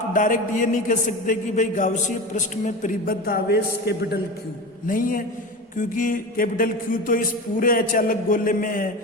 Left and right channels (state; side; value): normal; both; correlation 0.27